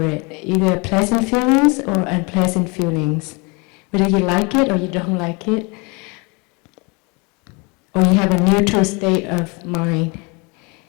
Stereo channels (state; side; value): quieter; right; 29.7 dB